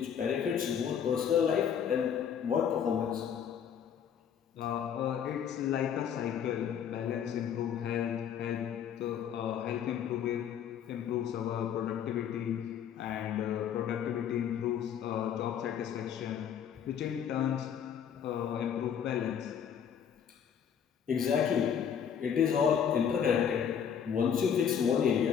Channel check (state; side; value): quieter; right; 8.2 dB